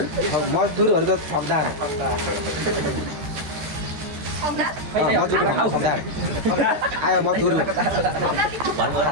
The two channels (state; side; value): late; left; 13 ms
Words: मजदुरहरू त ठगदार मजदुर ठगदार आयो मजदुर